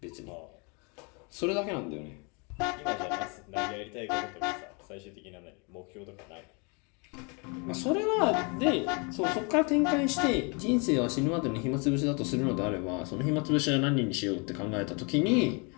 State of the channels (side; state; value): right; quieter; 32.7 dB